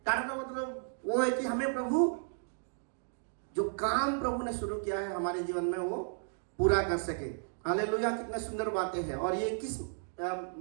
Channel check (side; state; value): left; silent; digital silence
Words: ताड़ना मतलब वो है कि हमें प्रभु जो काम प्रभु ने शुरू किया है हमारे जीवन में वो पूरा कर सके। हालेलुया। कितने सुंदर बातें हैं। और ये किस